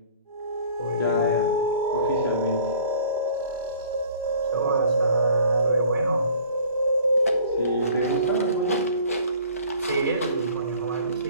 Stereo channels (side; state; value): both; inverted; correlation -0.51